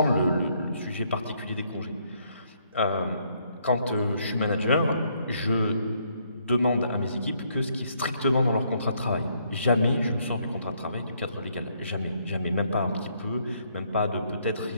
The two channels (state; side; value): inverted; both; correlation -0.70